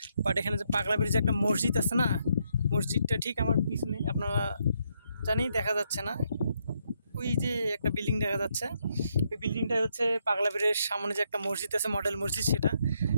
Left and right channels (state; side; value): inverted; both; correlation -0.76